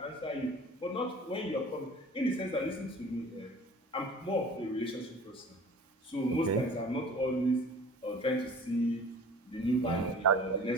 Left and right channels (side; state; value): both; normal; correlation 0.44